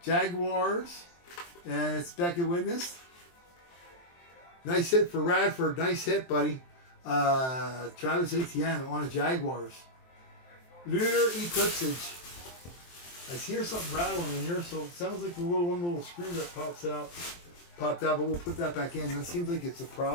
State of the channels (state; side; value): late; right; 23 ms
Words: Jaguars. And it's Beckett Witness. Nice hit for Radford. Nice hit, buddy. Travis Etienne on the Jaguars. Lunar Eclipsage. I hear something rattling in here, so it sounds like the little screw that popped out, but we'll put that back in. That seems like it's a